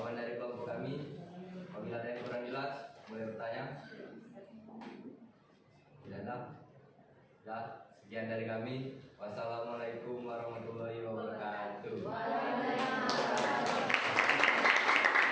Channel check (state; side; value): identical; both; correlation 1.00